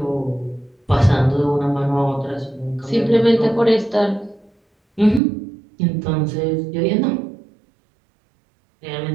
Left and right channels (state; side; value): drops out; left; at 5.2 s